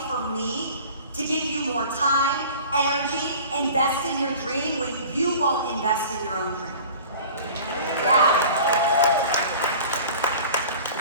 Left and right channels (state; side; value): inverted; both; correlation -0.43